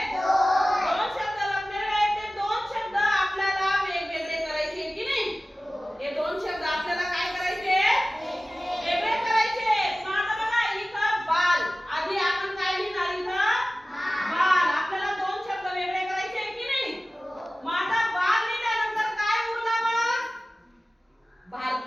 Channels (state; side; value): normal; both; correlation 0.97